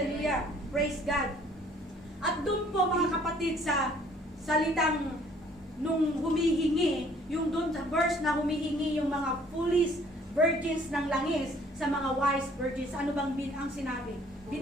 Praise God. At doon po mga kapatid sa salitang nung humihingi, yung doon sa verse na humihingi yung mga foolish virgins ng langis sa mga wise virgins, ano bang ang sinabi?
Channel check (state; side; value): normal; both; correlation 0.58